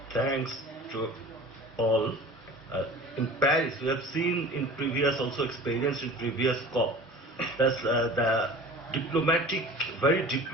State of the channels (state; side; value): normal; both; correlation 0.41